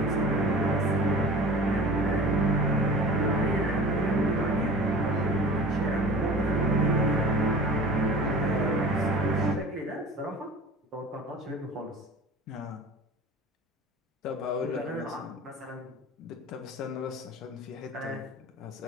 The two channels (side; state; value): both; normal; correlation 0.40